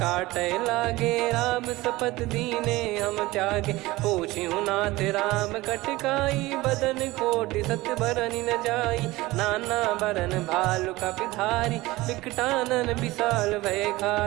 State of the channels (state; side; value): quieter; left; 19.5 dB